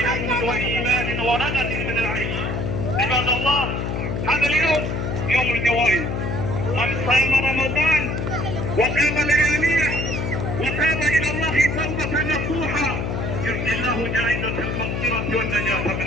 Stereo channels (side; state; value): left; noise; hum, 2 dB below the sound